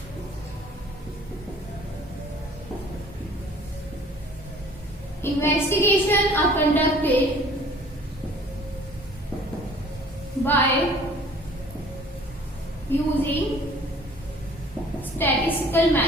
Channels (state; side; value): normal; both; correlation 0.51